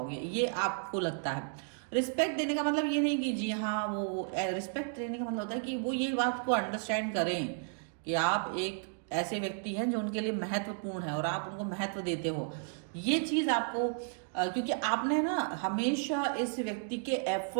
ये आपको लगता है। रिस्पेक्ट देने का मतलब ये नहीं कि जी हाँ, वो रिस्पेक्ट देने का मतलब होता है कि वो ये बात को अंडरस्टैंड करें कि आप एक ऐसे व्यक्ति हैं जो उनके लिए महत्वपूर्ण है और आप उनको महत्व देते हो। ये चीज़ आपको क्योंकि आपने ना हमेशा इस व्यक्ति के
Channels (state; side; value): silent; left; 56 dB below the other